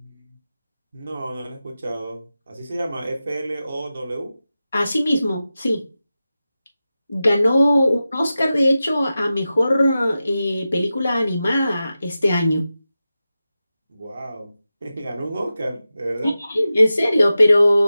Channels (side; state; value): both; inverted; correlation -0.93